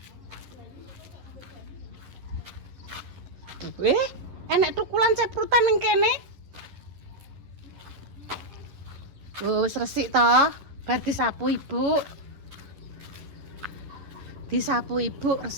Enek tukulan ceprutan ning kene. Oh, wis resik toh. Bar disapu ibu. Disapu ibu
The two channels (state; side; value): late; left; 11 ms